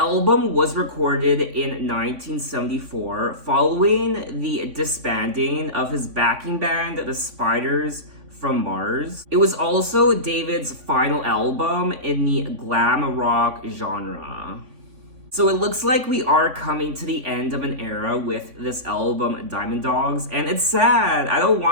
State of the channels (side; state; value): left; late; 3.5 ms